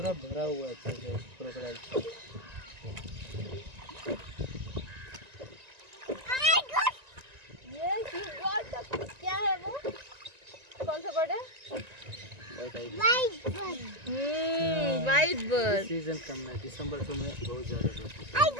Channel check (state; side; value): late; left; 1.9 ms